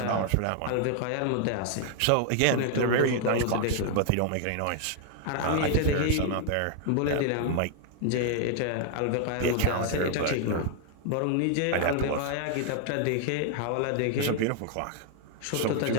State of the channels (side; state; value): both; different; correlation 0.00